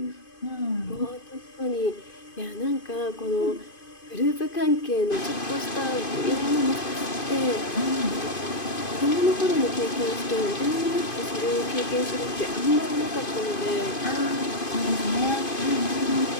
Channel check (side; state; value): right; late; 2.5 ms